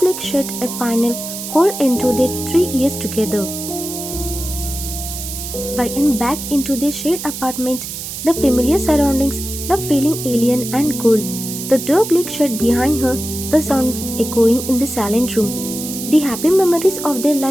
shut, a final, cold end to their 3 years together. YN backed into the shared apartment, the familiar surroundings now feeling alien and cold. The door clicked shut behind her, the sound echoing in the silent room. The happy memories of their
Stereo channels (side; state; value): right; noise; hiss, 8 dB below the sound